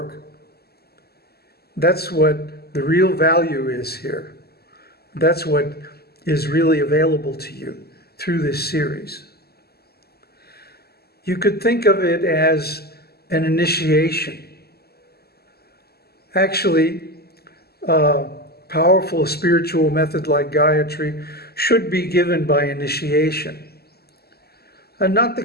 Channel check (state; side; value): late; right; 0.46 ms